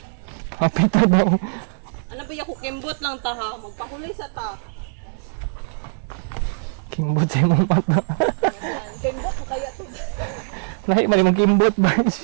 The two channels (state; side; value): silent; left; digital silence